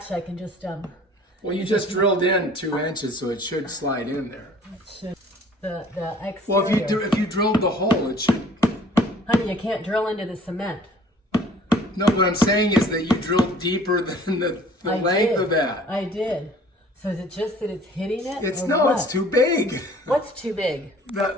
can just Well, you just drilled in 2 inches, so it should slide in there. the exterior. Well, if you drilled the hole, it should. Honey, you can't drill into the cement. No, what I'm saying is that you drilled deeper than the I length did. of that. I did. So is it just that it's hitting it? It's or no, what? it's too big. What's too big?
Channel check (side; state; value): both; normal; correlation 0.52